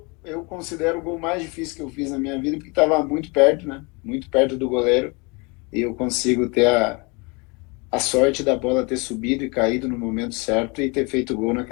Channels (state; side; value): quieter; right; 29.7 dB